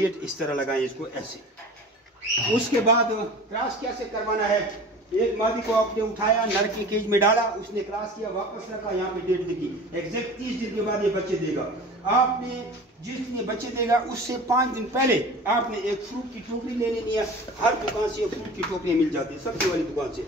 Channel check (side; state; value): both; normal; correlation 0.39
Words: इस तरह लगाएं इसको ऐसे। उसके बाद क्रॉस कैसे करवाना है? एक मादी को आपने उठाया, नर की केज में डाला, उसने क्रॉस किया, वापस रखा, यहाँ पे डेट लिखी, एग्जैक्ट 30 दिन के बाद ये बच्चे देगा। आपने जिस दिन ये बच्चे देगा उससे 5 दिन पहले आपने एक फ्रूट की टोकरी ले लेनी है। हर दुकान से फ्रूट की टोकरियाँ मिल जाती है, सब्जी वाली दुकान